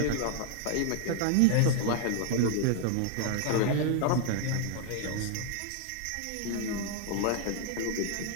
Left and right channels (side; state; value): both; different; correlation 0.00